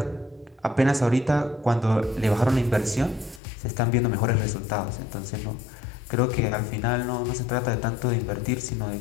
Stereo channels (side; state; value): right; drops out; at 3.4 s